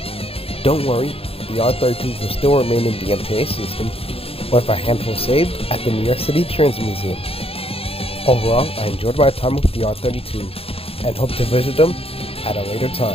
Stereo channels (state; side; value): late; right; 0.28 ms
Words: Don't worry, the R32s will still remain in the MTA system, with a handful saved at the New York City Transit Museum. Overall, I enjoyed my time with the R32 and hope to visit them at a later